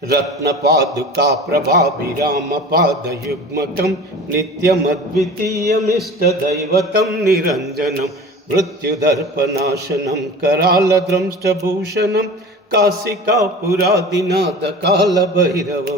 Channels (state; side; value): normal; both; correlation 0.37